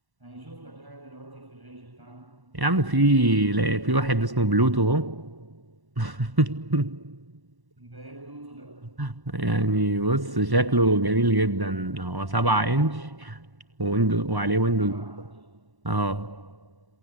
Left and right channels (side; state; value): left; late; 1.1 ms